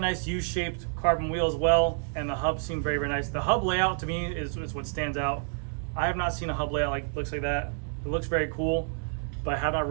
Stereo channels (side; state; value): left; silent; digital silence